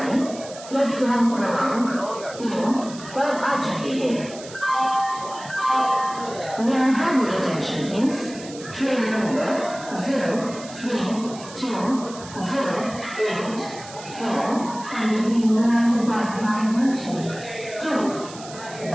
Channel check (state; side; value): noise; right; hiss, 16 dB below the sound